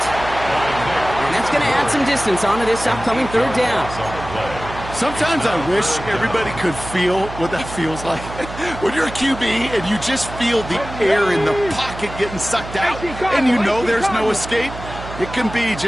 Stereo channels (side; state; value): right; noise; hum, 11 dB below the sound